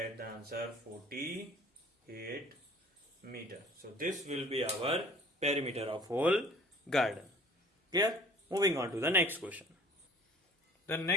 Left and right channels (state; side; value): normal; both; correlation 0.49